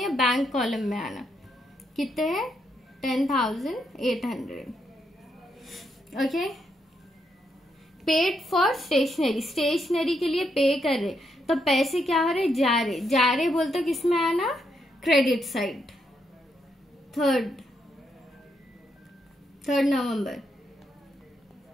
बैंक कॉलम में आना। कितने हैं, 10,800। ओके। पेड फॉर स्टेशनरी के लिए पे कर रहे, तो पैसे क्या हो रहे, जा रहे बोलते तो किस में आना, क्रेडिट साइड। 3 नवंबर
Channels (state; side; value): normal; both; correlation 0.79